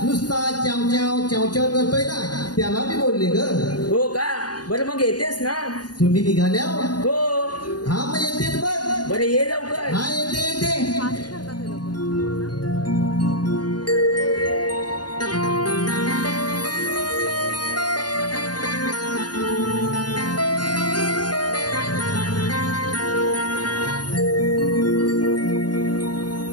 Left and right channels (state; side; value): late; right; 0.69 ms